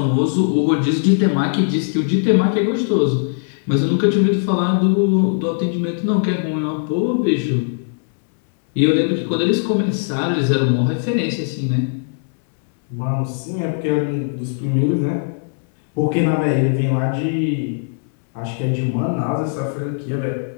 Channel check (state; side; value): silent; right; 66 dB below the other